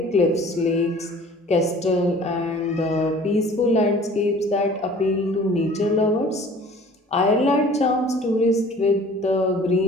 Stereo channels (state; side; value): normal; both; correlation 0.48